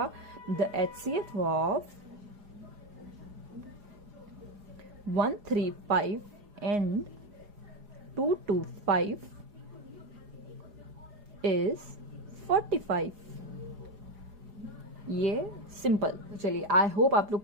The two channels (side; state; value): left; late; 4.8 ms